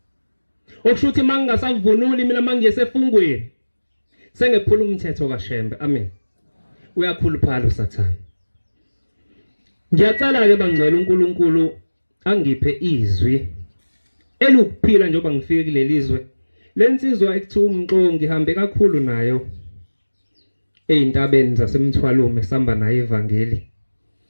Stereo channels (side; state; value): both; inverted; correlation -1.00